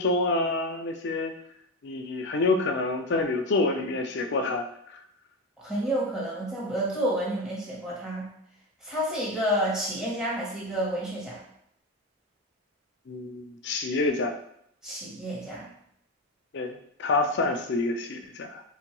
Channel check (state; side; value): normal; both; correlation 0.17